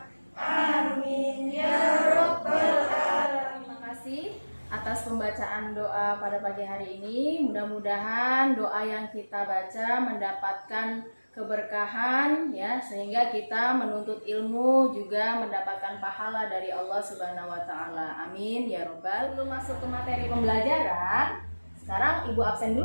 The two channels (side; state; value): both; inverted; correlation -1.00